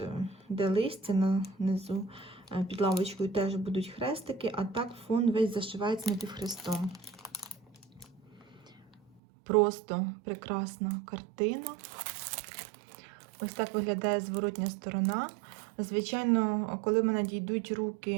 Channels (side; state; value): left; drops out; at 9.2 s